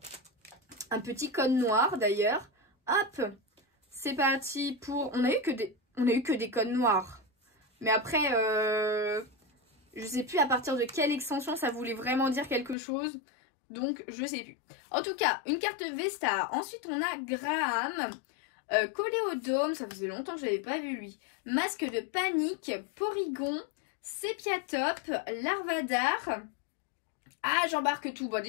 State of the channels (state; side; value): drops out; right; at 12.8 s